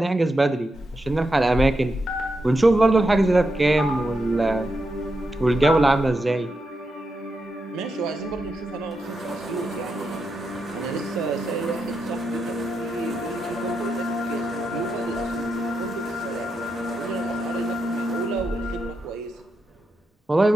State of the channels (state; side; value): normal; both; correlation 0.86